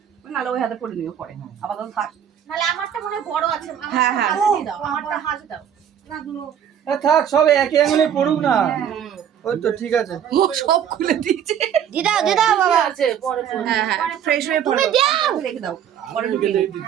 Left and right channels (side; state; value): left; quieter; 9.2 dB